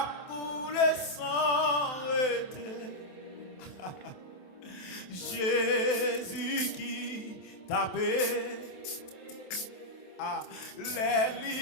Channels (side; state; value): right; late; 27 ms